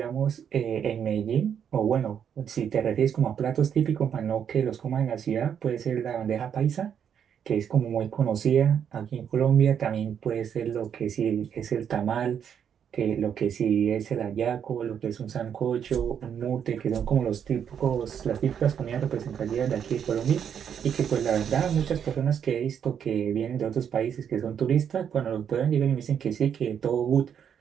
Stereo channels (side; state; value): left; quieter; 8.2 dB